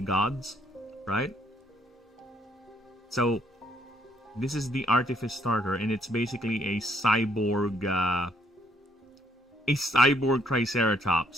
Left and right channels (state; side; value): normal; both; correlation 0.68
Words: right? So this is the Artifice starter, and it's basically a cyborg